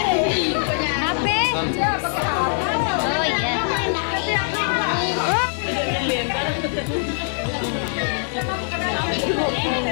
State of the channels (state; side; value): silent; right; digital silence